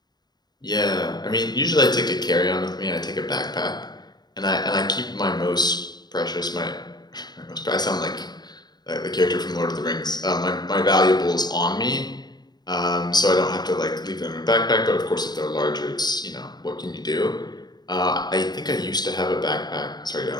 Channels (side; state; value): right; late; 0.20 ms